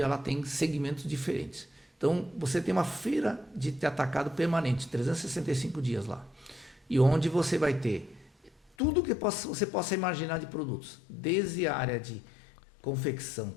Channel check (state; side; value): drops out; right; at 8.7 s